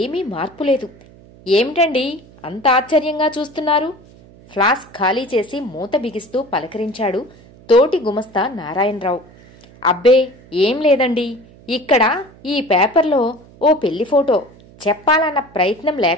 మార్పు లేదు. ఏమిటండి అంత ఆశ్చర్యంగా చూస్తున్నారు? ఫ్లాస్క్ ఖాళీ చేసి మూత బిగిస్తూ పలకరించాడు తోటి గుమస్తా నారాయణరావు. అబ్బే ఏం లేదండి, ఇక్కడ ఈ పేపర్లో ఓ పెళ్లి ఫోటో చెప్పాలన్న ప్రయత్నం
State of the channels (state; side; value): noise; right; hum, 24 dB below the sound